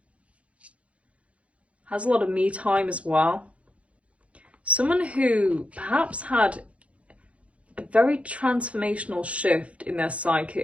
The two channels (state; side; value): late; left; 0.063 ms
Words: Has a lot of me time as well. Someone who perhaps had a very transformational shift in their